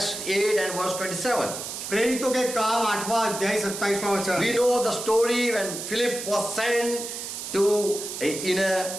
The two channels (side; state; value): right; noise; hiss, 7 dB below the sound